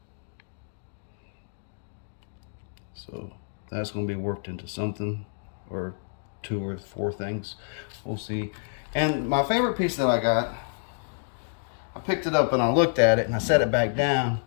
So that's going to be worked into something, or 2 or 4 things. We'll see. And my favorite piece that I got, I picked it up and I looked at it and I set it back down,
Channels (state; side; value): silent; right; digital silence